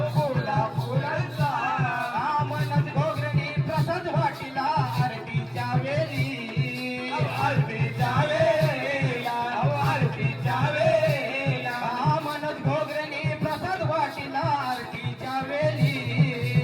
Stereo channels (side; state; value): both; identical; correlation 1.00